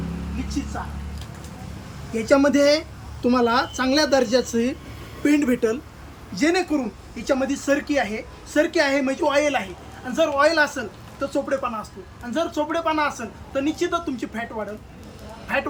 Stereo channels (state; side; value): identical; both; correlation 1.00